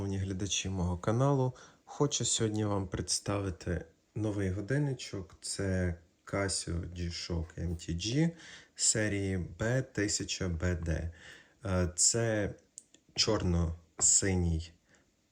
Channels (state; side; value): identical; both; correlation 1.00